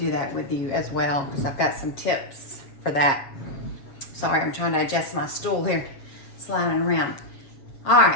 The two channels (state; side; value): late; right; 7.6 ms